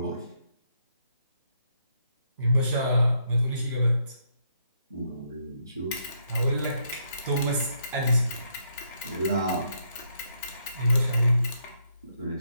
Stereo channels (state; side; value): inverted; both; correlation -0.76